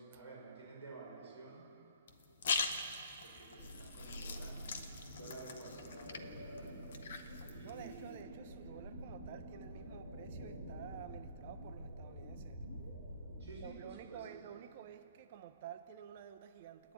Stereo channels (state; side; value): inverted; both; correlation -0.57